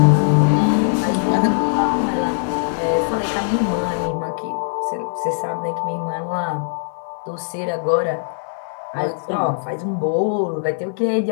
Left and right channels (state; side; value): silent; right; digital silence